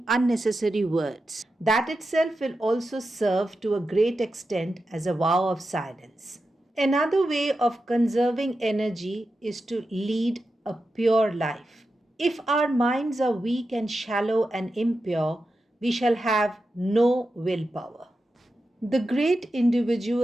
unnecessary words. That itself will also serve to a great extent as a vow of silence. Another way of conserving energy is to lead a pure life. If our minds are weak and shallow and impure, we shall have no willpower. The great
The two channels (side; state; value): both; normal; correlation 0.90